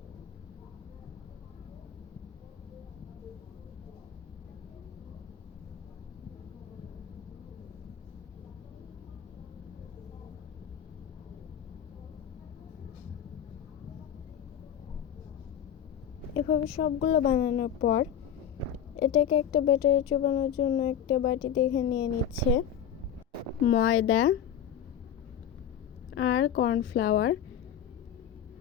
এভাবে সবগুলো বানানোর পর এটাকে একটা ব্যাটারে চোবানোর জন্য একটা বাটি দেখে নিয়ে নিচ্ছে ময়দা আর কর্নফ্লাওয়ার,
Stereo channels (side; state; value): right; quieter; 9.1 dB